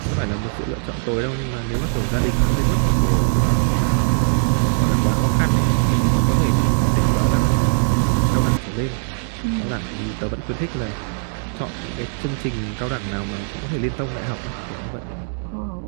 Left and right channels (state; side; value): silent; left; digital silence